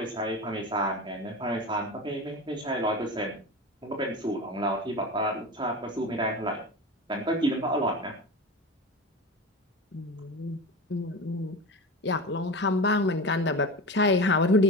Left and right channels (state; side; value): normal; both; correlation 0.27